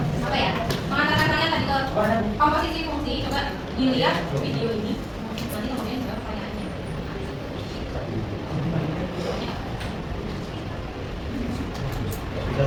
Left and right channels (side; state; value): both; identical; correlation 1.00